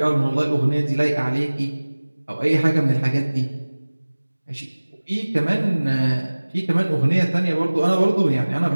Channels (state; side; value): inverted; both; correlation -1.00